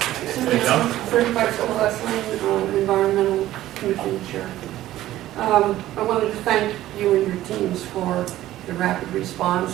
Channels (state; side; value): quieter; left; 14.4 dB